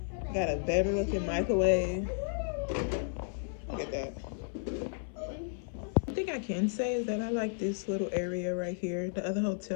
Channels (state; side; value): silent; right; 56 dB below the other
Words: Got a better looking microwave. Look at that. One thing I can say is that I like this little area right here. The other